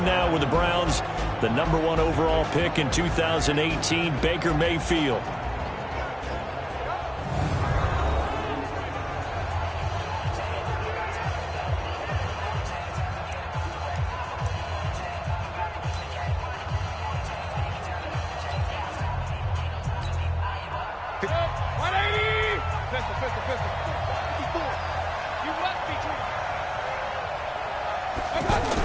now with the Browns. The number 1 overall pick in 2018, Baker Mayfield.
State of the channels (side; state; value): both; identical; correlation 1.00